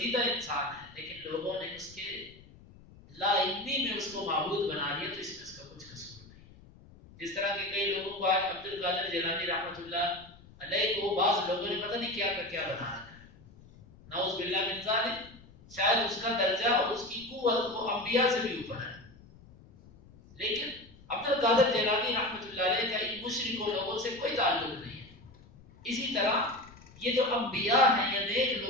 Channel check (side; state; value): left; noise; rumble, 23 dB below the sound